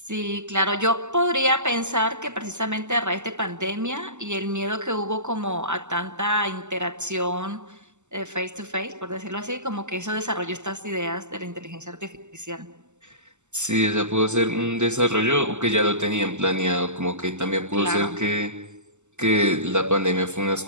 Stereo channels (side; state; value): left; late; 0.84 ms